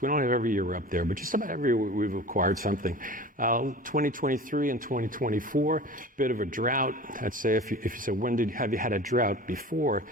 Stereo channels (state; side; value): normal; both; correlation 0.38